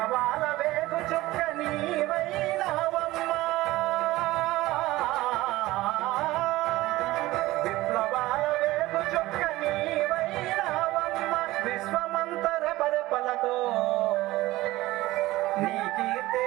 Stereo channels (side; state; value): left; quieter; 18.0 dB